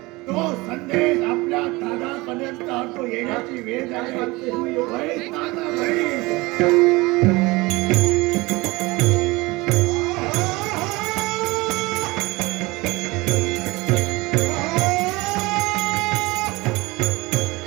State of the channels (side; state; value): left; quieter; 22.7 dB